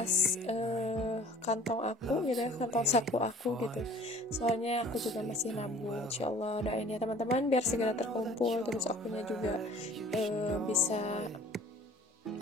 kantong aku gitu ya, kantong saku aku gitu, soalnya aku juga masih nabung. Insyaallah doain ya teman-teman biar segera terkumpul, terus akunya juga bisa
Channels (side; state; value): both; normal; correlation 0.49